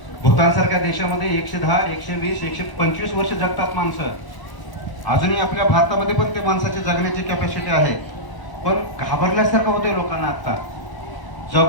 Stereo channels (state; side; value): late; right; 1.0 ms